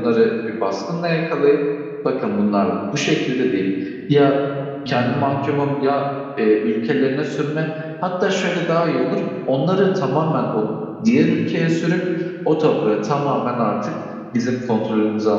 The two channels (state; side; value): identical; both; correlation 1.00